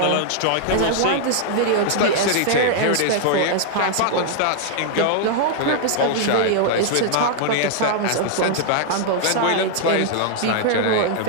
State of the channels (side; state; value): both; different; correlation 0.00